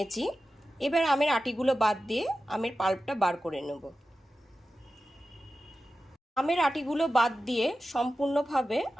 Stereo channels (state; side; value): normal; both; correlation 0.93